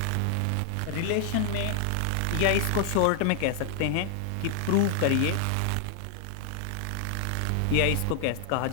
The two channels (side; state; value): both; different; correlation -0.01